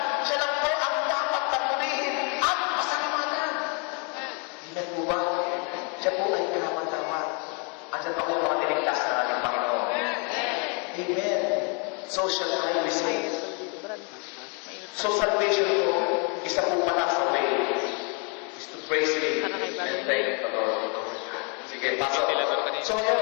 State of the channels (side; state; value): right; quieter; 35.8 dB